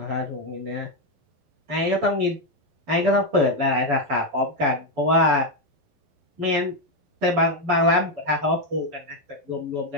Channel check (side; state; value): left; late; 11 ms